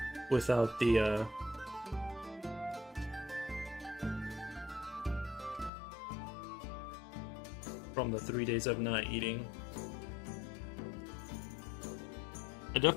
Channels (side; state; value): right; drops out; at 5.7 s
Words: without the from the 3 days of not eating. I